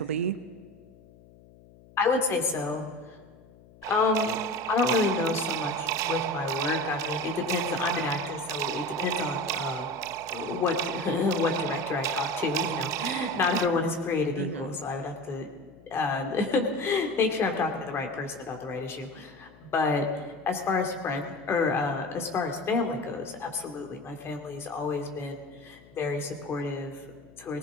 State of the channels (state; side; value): noise; left; hum, 24 dB below the sound